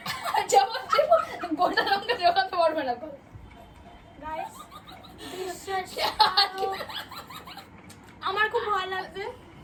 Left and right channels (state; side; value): identical; both; correlation 1.00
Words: জবাব গোটা লঙ্কা জোগাতে পারবে না। গাইস আমার খুব ভালো লাগছে।